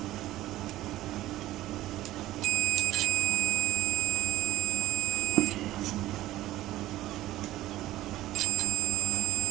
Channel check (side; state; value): left; quieter; 15.3 dB